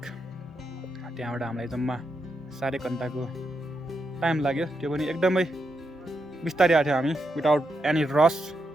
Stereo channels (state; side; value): normal; both; correlation 0.83